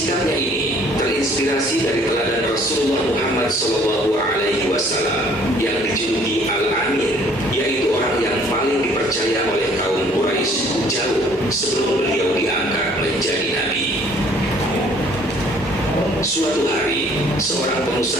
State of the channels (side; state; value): both; normal; correlation 0.58